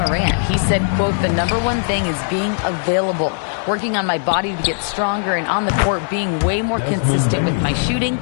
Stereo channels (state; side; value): silent; right; digital silence